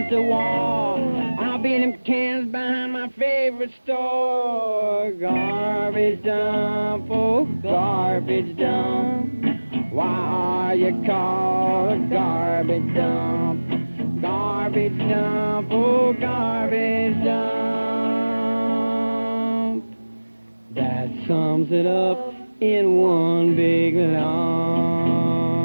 the war. I'll be in them cans behind my favorite store. Garbage dump, oh garbage dump. Why are you called a garbage dump? Garbage dump, oh garbage dump. That sums it up in one big lump.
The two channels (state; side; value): inverted; both; correlation -1.00